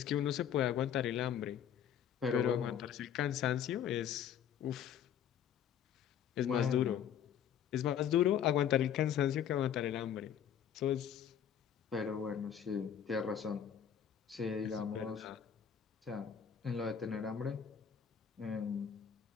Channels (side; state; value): right; quieter; 8.9 dB